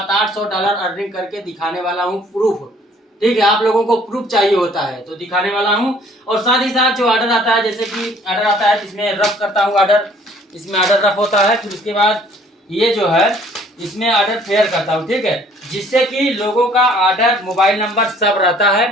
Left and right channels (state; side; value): normal; both; correlation 0.58